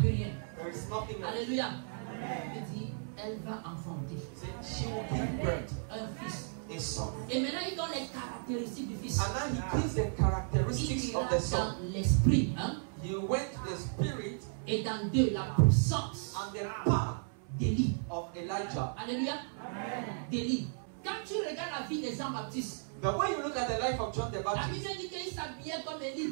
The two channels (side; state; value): left; silent; 55 dB below the other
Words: rien. there is nothing else. Alléluia. Il dit, elle va enfanter She will give birth un fils. a son. Et maintenant, il donne les caractéristiques du fils. And now he gives the characteristics Il of ira the son. dans l'esprit, hein, He went to the spirit et dans deux, la puissance and the power d'Élie. of Elijah. Alléluia. D'Élie. Quand tu regardes la vie de Jean-Baptiste, But when you look at the life of John the la Baptist, Bible dit qu'il s'habillait comme